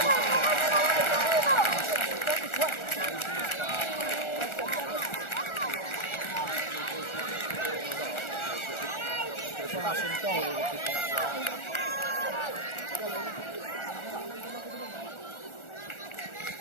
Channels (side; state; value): right; late; 1.4 ms